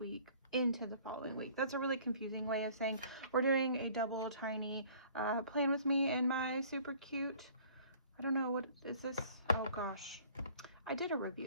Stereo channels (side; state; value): both; inverted; correlation -0.53